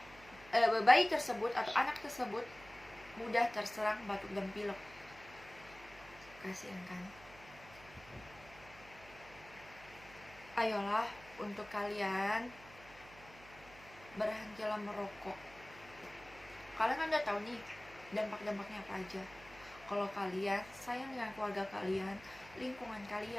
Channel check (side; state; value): right; noise; hum, 20 dB below the sound